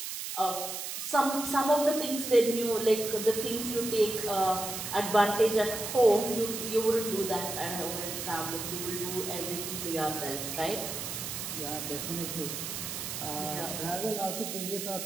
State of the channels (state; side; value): noise; right; hiss, 5 dB below the sound